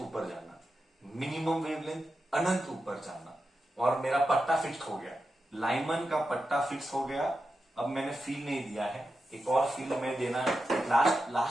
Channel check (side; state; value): both; normal; correlation 0.90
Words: जाना, मिनिमम वेवलेंथ अनंत ऊपर जाना. और मेरा पट्टा फिक्स हो गया, लाइमन का पट्टा फिक्स हो गया. अब मैंने फील नहीं दिया है, एक और फील में देना है,